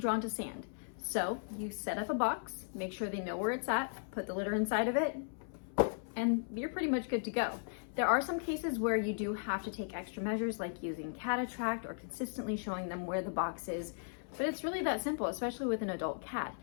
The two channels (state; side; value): silent; right; 53 dB below the other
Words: to sand. So you set up a box, make sure they know where it's at, put the litter inside of it, and you're pretty much good to go. There are some cases where you do have to take extra measures, like using cat attract or consistently showing them where the box is, but it's really that simple, especially with an adult cat.